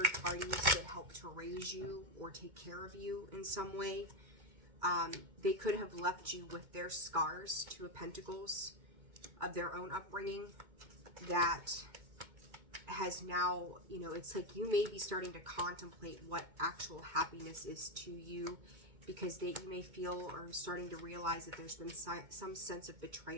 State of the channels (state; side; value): late; left; 2.2 ms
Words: parties that helped to raise you or take care of you in some way. They could have left you with their scars, Two of Pentacles, of their own upbringing that has now, you know, it's like you may be starting to contemplate what actual happiness is to you, because you may feel or starting to realize that there's been some sense of